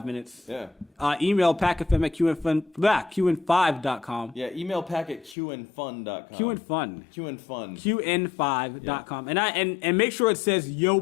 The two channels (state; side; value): drops out; right; at 5.4 s